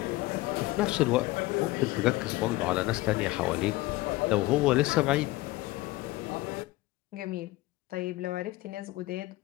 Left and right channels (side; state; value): right; quieter; 19.3 dB